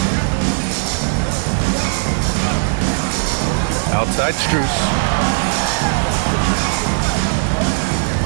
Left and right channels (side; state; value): left; silent; digital silence